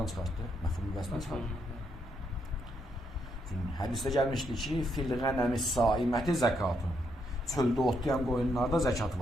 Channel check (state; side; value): normal; both; correlation 0.77